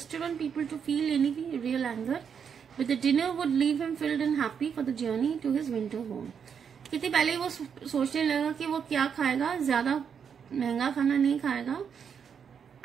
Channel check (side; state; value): left; quieter; 7.2 dB